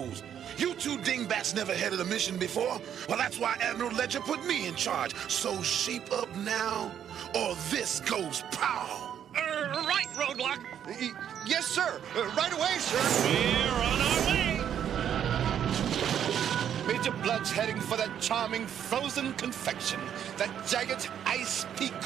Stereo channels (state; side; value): quieter; left; 9.3 dB